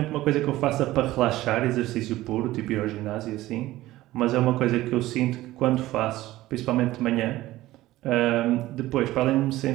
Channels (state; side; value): quieter; left; 16.5 dB